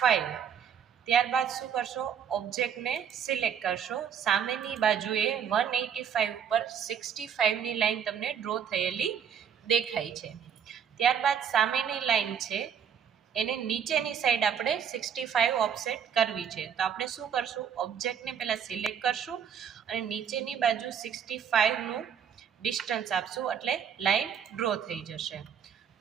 ત્યારબાદ શું કરશો, ઓબ્જેક્ટને સિલેક્ટ કરશો, સામેની બાજુએ 185 ઉપર 65ની લાઈન તમને ડ્રો થયેલી દેખાય છે. ત્યારબાદ સામેની લાઈન છે એને નીચેની સાઈડ આપણે 65 ઓફસેટ કરવી છે. તો આપણે શું કરશું, ઓબ્જેક્ટને પહેલાં સિલેક્ટ કરશું અને નીચેની બાજુ 65નું ડિસ્ટન્સ આપશું એટલે લાઈન ડ્રો થઈ જશે.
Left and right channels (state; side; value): quieter; left; 7.9 dB